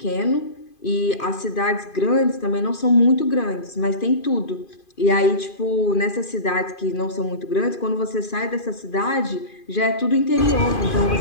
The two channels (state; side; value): late; right; 2.5 ms